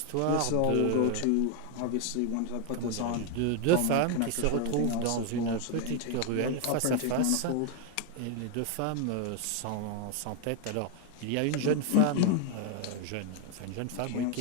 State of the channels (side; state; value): both; different; correlation 0.01